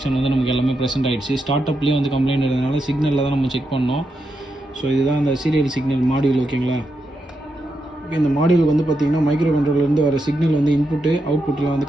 வந்து நமக்கு எல்லாமே ப்ரெசென்ட் ஆகிடுச்சு. ஸ்டார்ட் அப்லேயே வந்து கம்ப்ளைண்ட் இருந்ததுனால சிக்னலில் தான் நம்ம செக் பண்ணோம். ஸோ இதுதான் அந்த சீரியல் சிக்னல் மாடியூல். ஓகேங்களா, இந்த மாடியூல் வந்து பார்த்திங்கன்னா மைக்ரோ கண்ட்ரோலர்லேருந்து வர சிக்னல் வந்து இன்புட்டு அவுட்புட்டில் வந்து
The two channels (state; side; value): normal; both; correlation 0.85